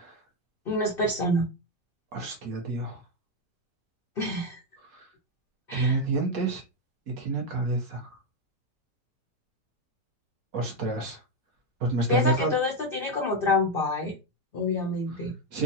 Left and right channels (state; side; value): normal; both; correlation 0.05